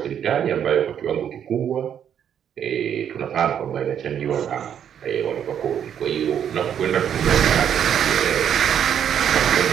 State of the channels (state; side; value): quieter; left; 8.9 dB